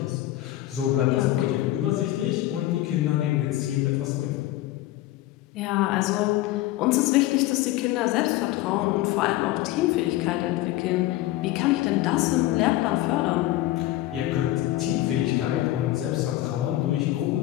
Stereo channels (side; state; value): right; quieter; 15.6 dB